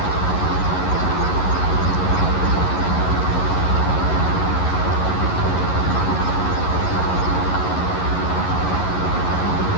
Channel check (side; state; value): right; late; 11 ms